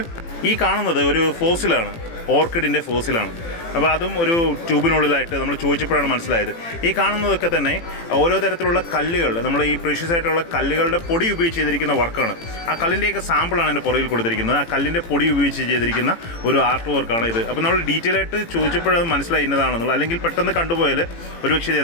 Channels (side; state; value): right; late; 18 ms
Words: ഈ കാണുന്നത് ഒരു ഫോസിലാണ്, ഓർക്കിഡിൻ്റെ ഫോസിലാണ്. അപ്പോൾ അതും ഒരു ട്യൂബിനുള്ളിലായിട്ട് നമ്മൾ ചോദിച്ചപ്പോഴാണ് മനസ്സിലായത്. ഈ കാണുന്നതൊക്കെ തന്നെ ഓരോ തരത്തിലുള്ള കല്ലുകൾ, നമ്മൾ ഈ പ്രീഷ്യസ് ആയിട്ടുള്ള കല്ലുകളുടെ പൊടി ഉപയോഗിച്ച് ചെയ്തിരിക്കുന്ന വർക്കാണ്. ആ കല്ലിൻ്റെയൊക്കെ സാമ്പിളാണ് എൻ്റെ പുറകിൽ കൊടുത്തിരിക്കുന്നത്. ആ കല്ലിൻ്റെ പൊടി ഉപയോഗിച്ച് ചെയ്തിരിക്കുന്ന ഒരു ആർട്ട് വർക്കാണ് ഇത്. അപ്പോൾ നമ്മൾ ഡീറ്റെയിൽ ആയിട്ട് ചോദിച്ചപ്പോഴത് മനസ്സിലായി ഇന്നതാണെന്നുള്ളത്. അല്ലെങ്കിൽ പെട്ടെന്ന് കണ്ടുപോയാൽ ഒരുപക്ഷെ ഇത്